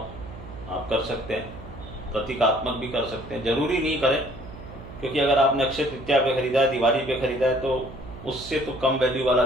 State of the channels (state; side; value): noise; right; hum, 15 dB below the sound